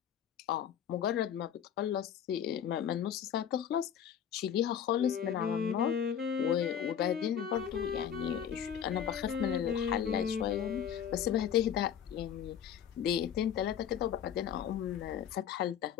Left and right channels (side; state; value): right; quieter; 8.9 dB